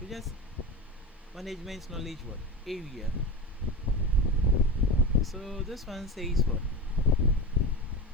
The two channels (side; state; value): both; normal; correlation 0.25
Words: We just management knowledge what area. So this one says what?